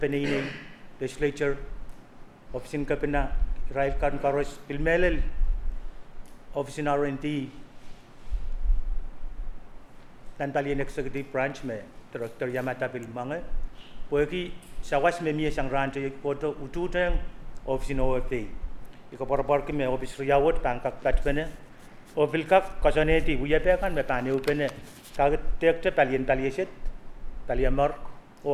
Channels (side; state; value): both; identical; correlation 1.00